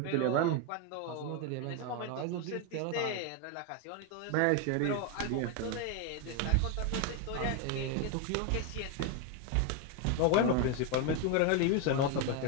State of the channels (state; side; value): different; both; correlation 0.01